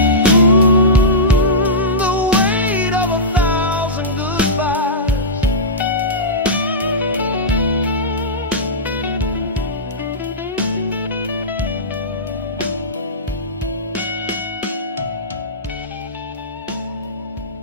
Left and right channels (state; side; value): normal; both; correlation -0.16